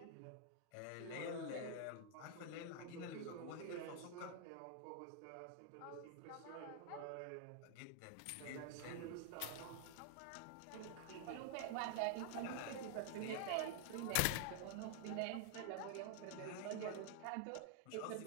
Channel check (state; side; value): different; both; correlation 0.00